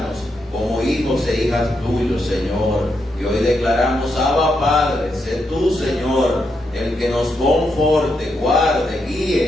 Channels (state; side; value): normal; both; correlation 0.82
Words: como hijos e hijas tuyos, Señor. Y hoy declaramos, Abba Padre, sé tú, Señor, el que nos conforte, guarde,